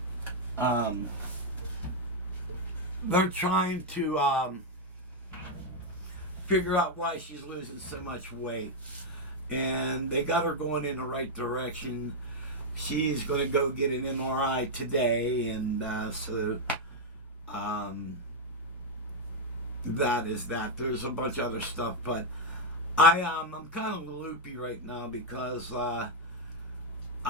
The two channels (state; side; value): normal; both; correlation -0.01